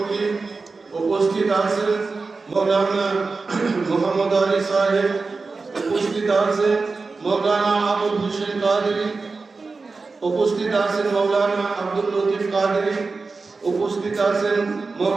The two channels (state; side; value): quieter; left; 4.1 dB